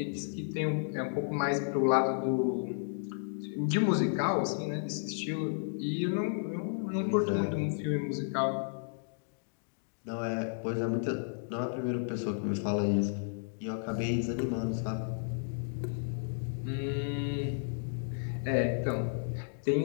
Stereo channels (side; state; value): right; silent; digital silence